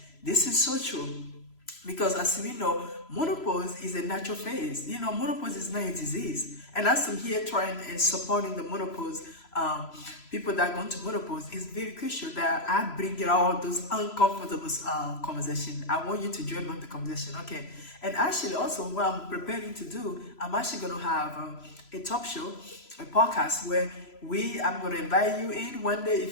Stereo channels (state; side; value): late; right; 3.0 ms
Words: This is so true. Because as we know, menopause is a natural phase. Menopause is not a disease. And as I'm here trying and supporting the menopause, people that go into menopause, it's very crucial that I bring all those uncomfortable conversations. I want you to join on the conversation, okay? And actually also what I'm preparing to do, I'm actually going to have a talk show, a podcast where I'm going to invite you in one day.